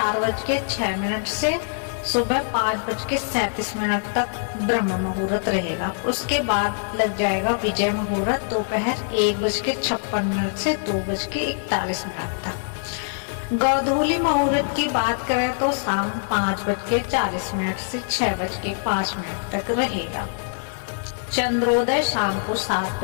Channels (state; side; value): silent; right; digital silence